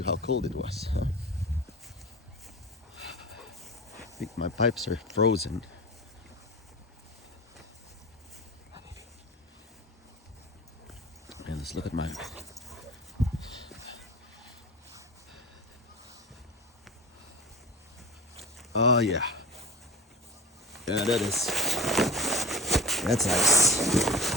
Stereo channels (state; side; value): normal; both; correlation 0.35